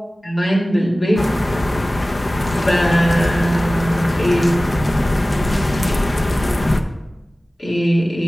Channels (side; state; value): both; normal; correlation 0.97